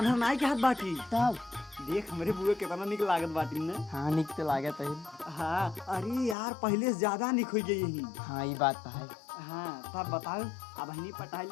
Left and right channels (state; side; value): drops out; right; at 6.4 s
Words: नाई के हाथ बाटी तब देख हमारे बुआ कितना निक लागत बाटी ने। हाँ निक तो लागत है। हाँ अरे यार पहले से ज्यादा निक हो गई यही। हाँ ये बात तो है। हाँ तब बताओ अब हनी पटाई